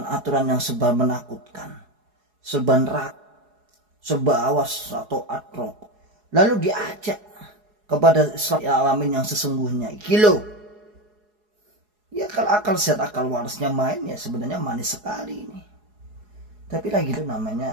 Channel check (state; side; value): late; left; 4.8 ms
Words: yang serba menakutkan, serba neraka, serba awas atau atrok, lalu diajak kepada Islam alamin yang sesungguhnya. Kilo, ya kalau akal sehat, akal warasnya main ya sebenarnya manis sekali ini. Tapi lagi itu